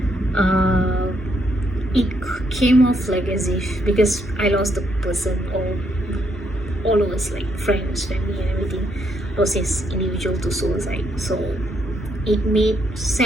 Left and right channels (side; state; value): both; normal; correlation 0.74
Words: It came off like as if, because I lost the person, or all of us, like friends, family and everything, lost this individual to suicide. So it made